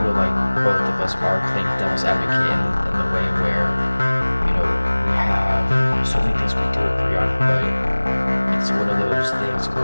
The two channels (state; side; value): inverted; both; correlation -1.00